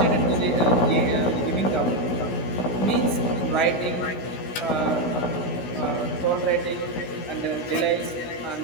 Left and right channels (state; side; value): late; right; 16 ms